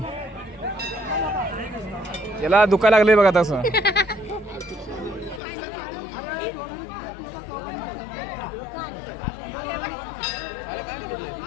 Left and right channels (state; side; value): drops out; right; at 5.4 s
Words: याला दुखायला लागले बघा तसं.